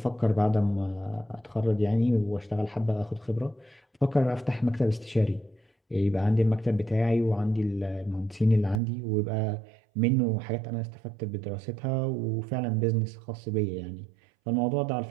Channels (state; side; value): drops out; left; at 8.8 s